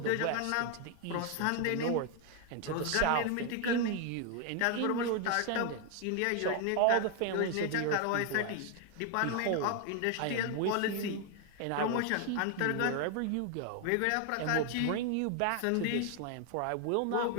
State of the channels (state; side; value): different; both; correlation 0.01